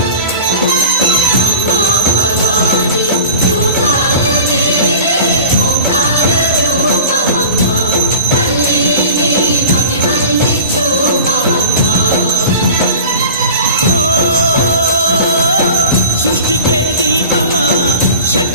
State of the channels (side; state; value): both; inverted; correlation -0.36